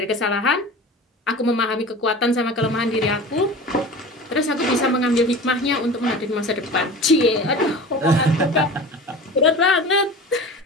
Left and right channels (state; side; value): normal; both; correlation 0.36